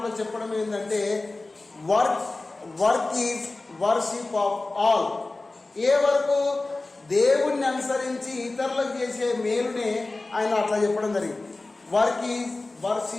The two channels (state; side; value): quieter; right; 3.2 dB